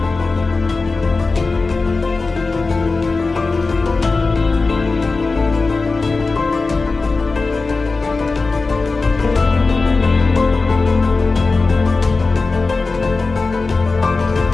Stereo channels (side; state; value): right; quieter; 3.9 dB